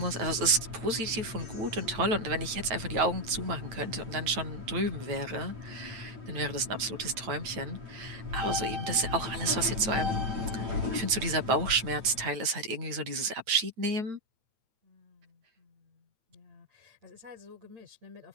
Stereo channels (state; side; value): late; left; 8.8 ms